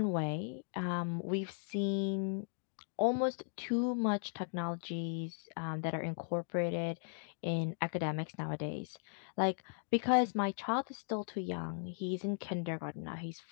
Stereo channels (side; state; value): right; silent; digital silence